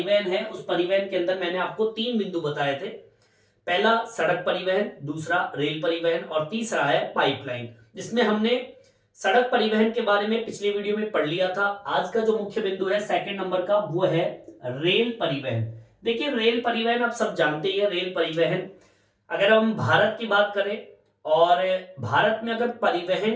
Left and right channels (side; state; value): both; identical; correlation 1.00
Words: है, उस परिवहन के अंदर मैंने आपको 3 बिंदु बताए थे। पहला सड़क परिवहन, दूसरा रेल परिवहन और तीसरा है पाइपलाइन, जिसमें हमने सड़क परिवहन के बारे में पिछली वीडियो में पढ़ लिया था। आज का जो मुख्य बिंदु है सेकंड नंबर का, वो है रेल परिवहन। देखिए रेल परिवहन आप सब जानते ही है। रेल परिवहन अगर हम भारत की बात करें और भारत में अगर